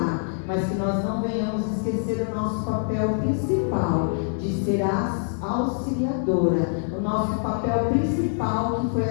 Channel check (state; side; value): silent; right; 62 dB below the other